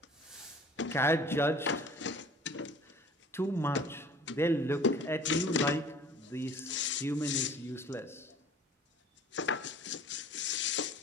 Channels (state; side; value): normal; both; correlation 0.48